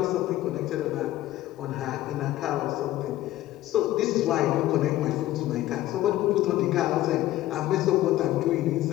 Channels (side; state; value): right; quieter; 14.9 dB